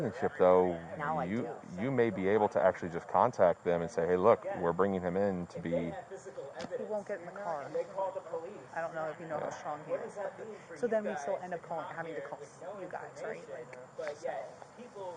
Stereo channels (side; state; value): both; identical; correlation 1.00